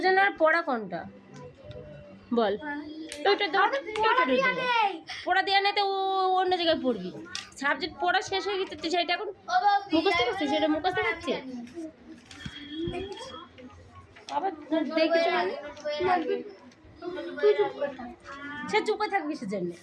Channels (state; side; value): identical; both; correlation 1.00